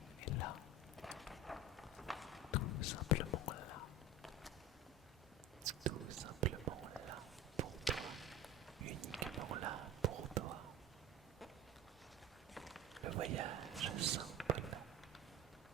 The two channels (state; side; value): normal; both; correlation 0.32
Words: est là. Tout simplement là. Tout simplement là pour toi. Uniquement là pour toi. Le voyage simple,